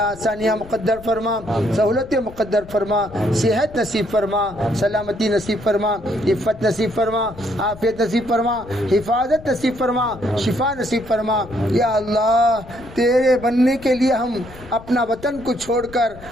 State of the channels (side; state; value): left; noise; rumble, 18 dB below the sound